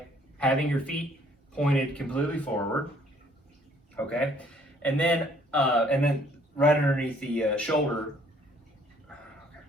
having your feet pointed completely forward, okay? And then right underneath the shoulder.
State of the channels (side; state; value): both; normal; correlation 0.61